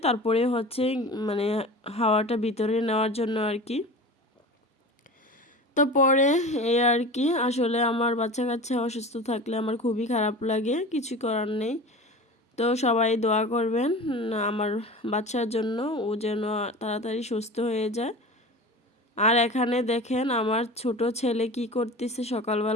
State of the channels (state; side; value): normal; both; correlation 0.34